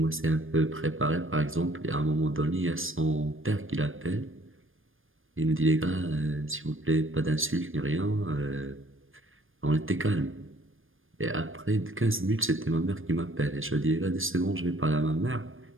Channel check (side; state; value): left; late; 0.59 ms